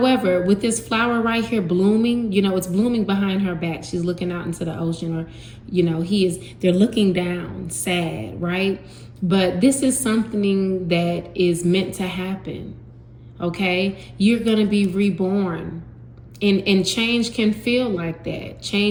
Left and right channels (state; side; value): identical; both; correlation 1.00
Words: with this flower right here blooming, it's blooming behind her back. She's looking out into the ocean, or, they're looking down, sad, right? But this is something that is meant to happen, okay? You're going to be reborn. And change can feel like that.